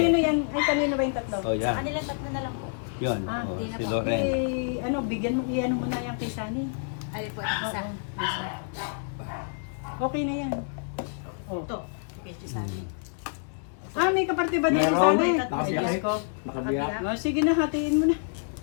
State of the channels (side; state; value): right; silent; 60 dB below the other